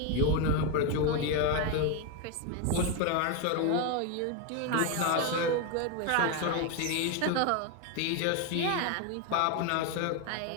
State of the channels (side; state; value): both; different; correlation 0.02